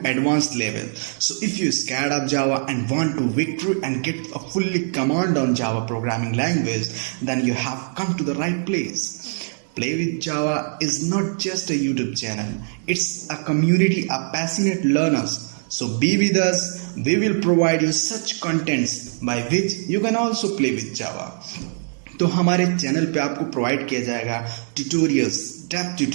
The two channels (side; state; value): left; silent; 64 dB below the other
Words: advanced level. So if you're scared of Java and want to victory and get a fully command on Java programming language, then you have come to the right place. Play with Java is not just a YouTube channel, it's a community of passionate learners. So be with us, we will provide you such contents by which you can also play with Java. तो हमारे channel पे आपको provide किया जाएगा tutorials, depth